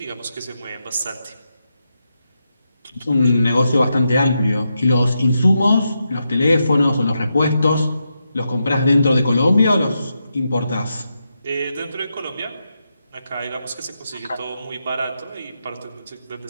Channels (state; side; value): inverted; both; correlation -0.85